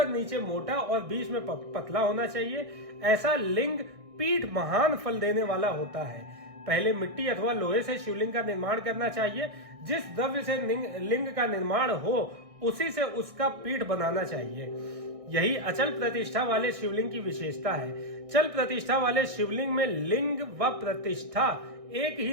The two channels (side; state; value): left; late; 1.6 ms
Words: नीचे मोटा और बीच में पतला होना चाहिए। ऐसा लिंग पीठ महान फल देने वाला होता है। पहले मिट्टी अथवा लोहे से शिवलिंग का निर्माण करना चाहिए। जिस द्रव्य से लिंग का निर्माण हो उसी से उसका पीठ बनाना चाहिए। यही अचल प्रतिष्ठा वाले शिवलिंग की विशेषता है। चल प्रतिष्ठा वाले शिवलिंग में लिंग व प्रतिष्ठा एक